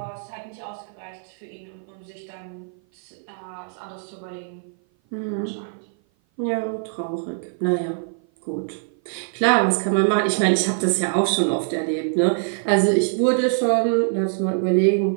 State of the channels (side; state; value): left; silent; 56 dB below the other